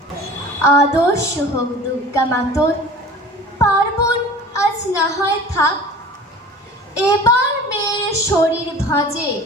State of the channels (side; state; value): both; normal; correlation 0.41